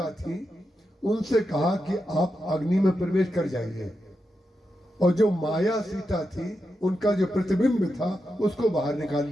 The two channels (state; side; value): normal; both; correlation 0.87